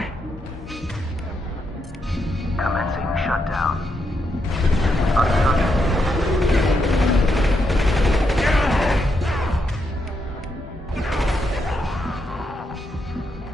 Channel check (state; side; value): normal; both; correlation 0.81